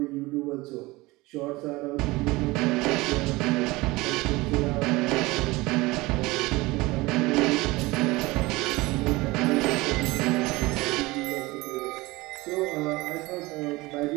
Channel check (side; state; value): left; quieter; 21.4 dB